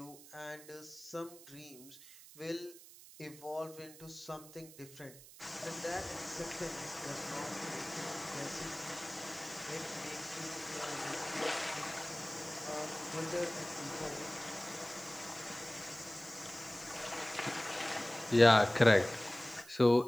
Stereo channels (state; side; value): noise; right; hiss, 18 dB below the sound